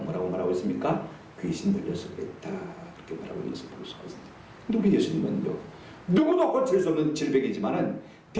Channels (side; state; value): both; identical; correlation 1.00